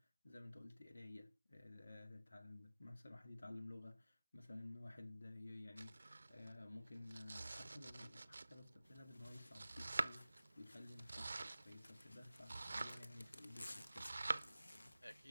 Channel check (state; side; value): inverted; both; correlation -0.97